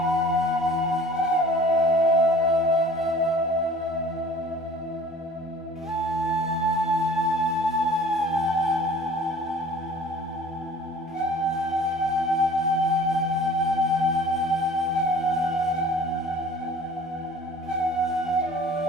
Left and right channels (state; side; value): normal; both; correlation 0.47